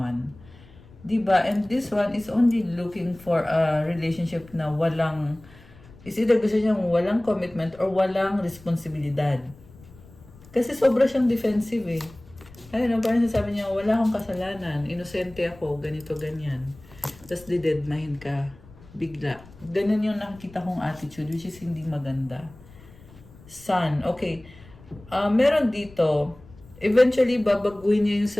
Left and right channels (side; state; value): left; noise; rumble, 23 dB below the sound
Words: Diba? And this one is only looking for a relationship na walang, is either gusto niyang walang commitment or walang responsibilidad. Kasi sobra siyang defensive eh. Ayun, parang sasabi niya, wala akong kasalanan, inosente ako, ganito, ganyan. Tapos didedmahin ka, bigla. Ganun yung nakikita kong attitude, which is hindi maganda. Sun, okay. Meron dito, eventually babaguhin niya yung